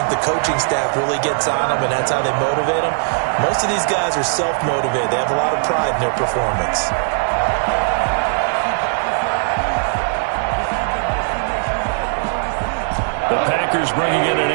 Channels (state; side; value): silent; left; 64 dB below the other